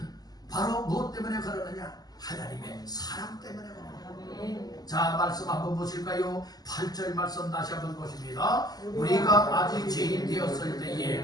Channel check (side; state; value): right; late; 0.19 ms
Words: 바로 무엇 때문에 그러느냐? 하나님의 사랑 때문에 그러느냐. 자, 말씀 한번 보실까요? 8절 말씀 다시 한번 보십니다. 우리가 아직 죄인 되었을